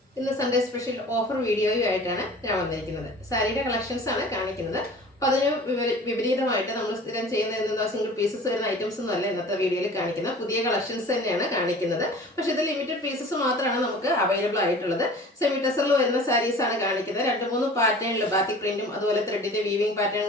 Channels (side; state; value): both; normal; correlation 0.43